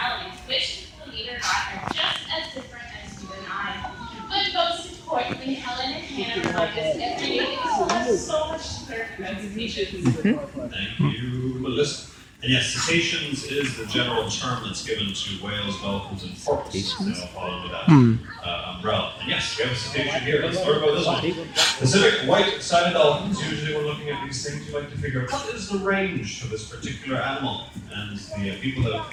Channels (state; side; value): identical; both; correlation 1.00